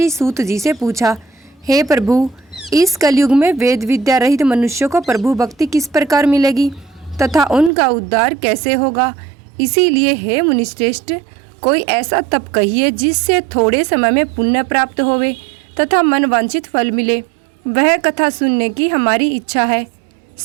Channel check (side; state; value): left; drops out; at 7.7 s